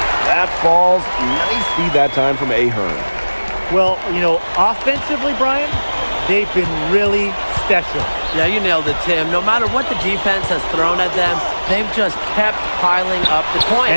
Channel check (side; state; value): both; inverted; correlation -1.00